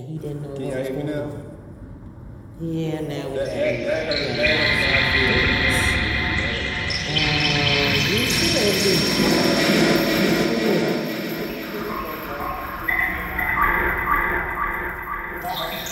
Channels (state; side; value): identical; both; correlation 1.00